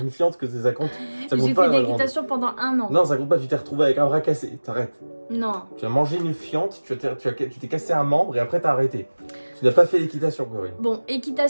fiente que ça compte. Ça compte J'ai pas, fait de la grande. l'équitation pendant 1 an. Non, ça compte pas, tu t'es retrouvé avec un bras cassé. T'arrêtes. Non. Tu as mangé une fiente, tu t'es cassé un membre et après t'as arrêté. Tu n'as pas fait d'équitation, Corinne. Bon,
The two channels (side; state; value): both; inverted; correlation -1.00